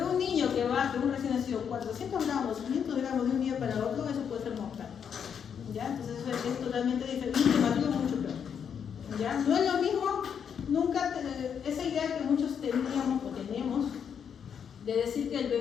un niño que baje, un recién nacido, 400 gramos, 500 gramos de un día para otro, eso puede ser mortal, ¿ya? Entonces eso es totalmente diferente, mucho peor, ¿ya? No es lo mismo, nunca, esa idea que muchos teníamos o tenemos, de decir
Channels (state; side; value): quieter; right; 7.6 dB